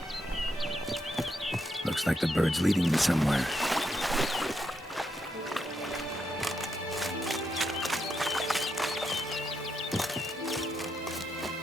Looks like the bird's leading me somewhere.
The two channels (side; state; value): both; normal; correlation 0.81